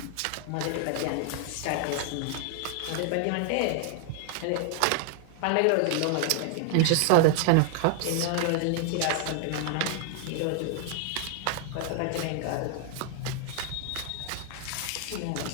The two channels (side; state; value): both; different; correlation 0.00